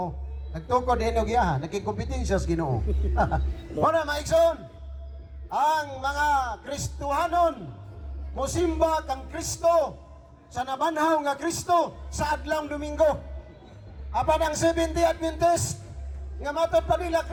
nagtukod din o giyaha, nagkikompetensya sa Ginoo. Muna, maikson, ang mga Kristohanon, musimba kang Kristo, sa nabanhaw nga Kristo, sa adlang Domingo. Apan ang 70 Adventist, nga matod pa nila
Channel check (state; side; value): identical; both; correlation 1.00